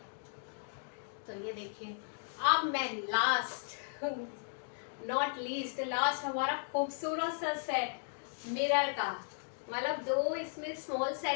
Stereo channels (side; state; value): right; silent; digital silence